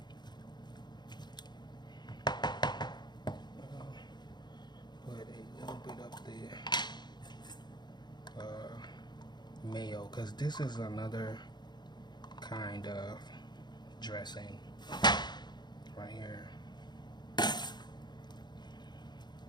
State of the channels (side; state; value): right; late; 0.21 ms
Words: Put a little bit up the mayo, because this is another kind of dressing right here.